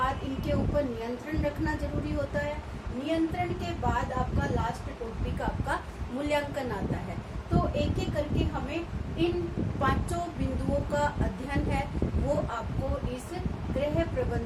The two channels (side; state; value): both; identical; correlation 1.00